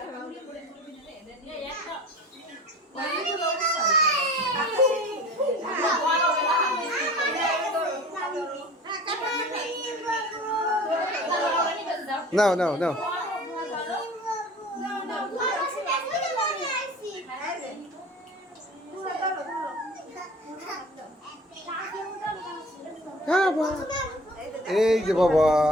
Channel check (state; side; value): normal; both; correlation 0.42